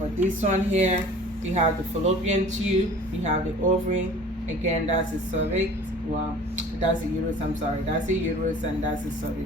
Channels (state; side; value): normal; both; correlation 0.45